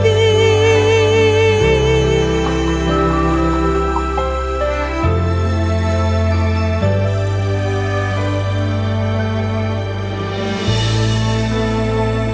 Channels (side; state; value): both; identical; correlation 1.00